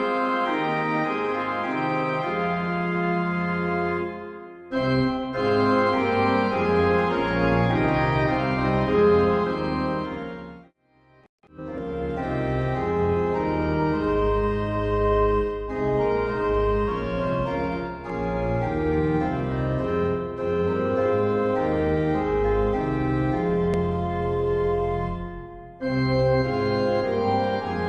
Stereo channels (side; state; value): both; identical; correlation 1.00